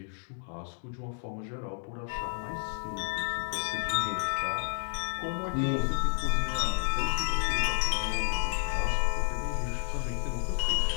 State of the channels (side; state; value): right; silent; 56 dB below the other